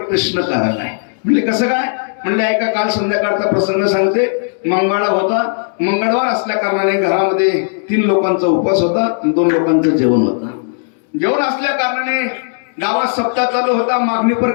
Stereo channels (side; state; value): right; silent; digital silence